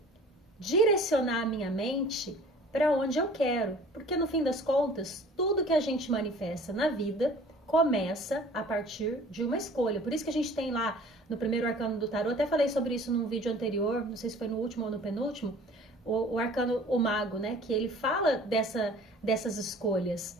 direcionar a minha mente para onde eu quero. Porque no fim das contas, tudo que a gente manifesta na vida começa a partir de uma escolha. Por isso que a gente tem lá no primeiro arcano do tarô, até falei sobre isso num vídeo anterior, não sei se foi no último ou no penúltimo, o arcano, o mago, né? Que ele fala dessas escolhas,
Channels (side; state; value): both; normal; correlation 0.48